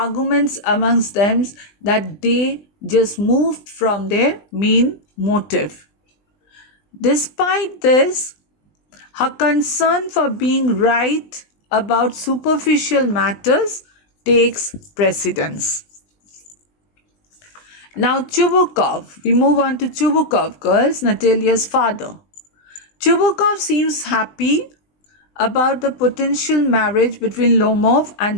amongst them that they just moved from their main motive. Despite this, her concern for being right about superficial matters takes precedence. Now Chubukov, we move on to Chubukov, girls, Natalia's father. Chubukov seems happy about the potential marriage between Lomov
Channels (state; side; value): late; right; 20 ms